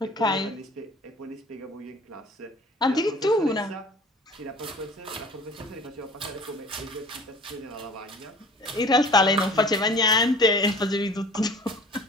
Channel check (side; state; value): both; normal; correlation 0.46